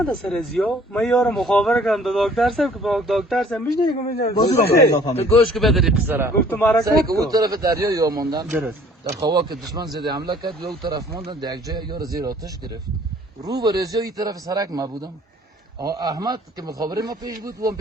سر ازیا من یار مخابره کردم دو دکتر صاحب که با دکتر صاحب میشنه تو گوش که بدری قصره گفتم حرکت اون طرف دریا یا موندن درست در خوا که دشمن زده حمله کرد یا اون طرف موندن در یک جای یار زیر آتش گرفت رو به رزیا این طرف سرک ما بودم احمد که مخابره ما پیش بود و هم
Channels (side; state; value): both; normal; correlation 0.55